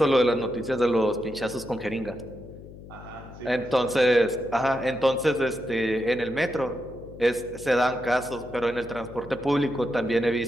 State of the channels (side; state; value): left; noise; hum, 16 dB below the sound